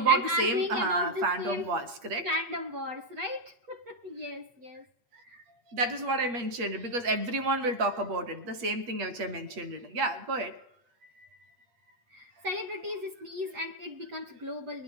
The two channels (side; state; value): left; late; 8.4 ms